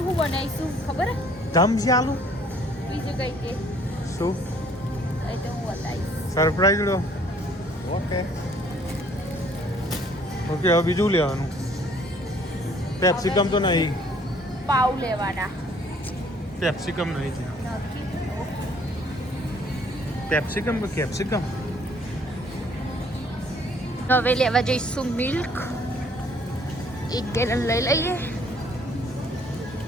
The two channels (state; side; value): normal; both; correlation 0.59